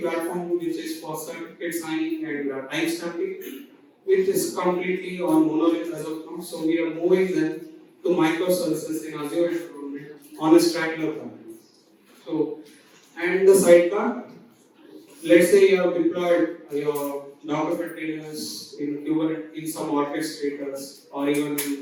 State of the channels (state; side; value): identical; both; correlation 1.00